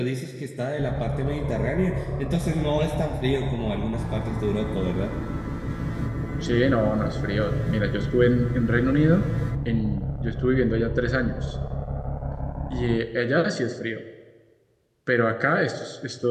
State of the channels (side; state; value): both; identical; correlation 1.00